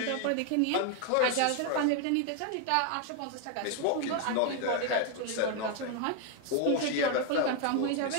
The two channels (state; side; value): different; both; correlation 0.01